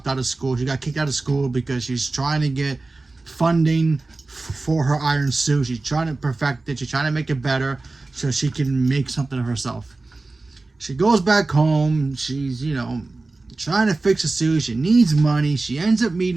out of school. She got kicked out of school because she's trying to get funding for her iron suit. She's trying to perfect it. She's trying to make it better so she can make something of herself. She goes back home. She's, trying to fix a suit. She needs money. She ends up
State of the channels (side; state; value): left; quieter; 3.3 dB